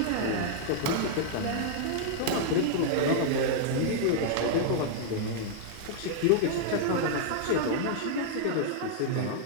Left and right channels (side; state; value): both; different; correlation -0.01